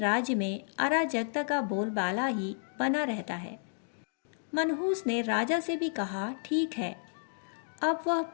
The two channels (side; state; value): right; silent; digital silence